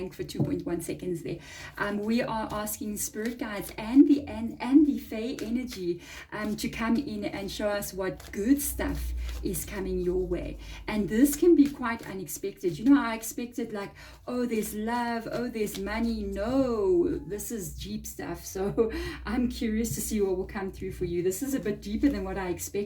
for 2.1 seconds there. We are asking spirit guides and the Fae energy to come in and show us what good stuff is coming your way. And this can be quite unexpected. You know, I expected oh, there's love, oh, there's money. No, this is deep stuff. So I'm curious to see what will come through for you. This is a bit deeper than what I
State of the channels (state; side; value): identical; both; correlation 1.00